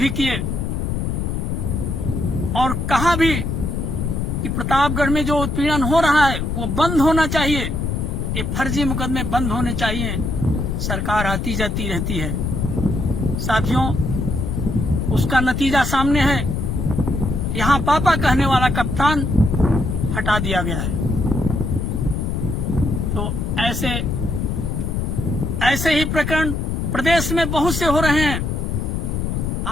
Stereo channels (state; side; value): noise; left; rumble, 1 dB below the sound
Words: किए और कहा भी कि प्रतापगढ़ में जो उत्पीड़न हो रहा है वो बंद होना चाहिए, ये फर्जी मुकदमे बंद होने चाहिए। सरकार आती जाती रहती है। साथियों, उसका नतीजा सामने है। यहां पापा कहने वाला कप्तान हटा दिया गया है। तो ऐसे ही प्रकरण प्रदेश में बहुत से हो रहे हैं।